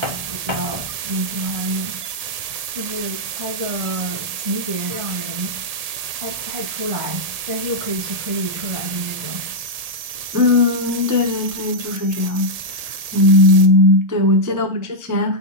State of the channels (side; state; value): left; late; 1.7 ms